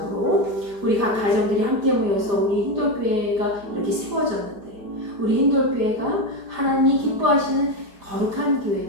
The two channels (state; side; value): late; left; 5.0 ms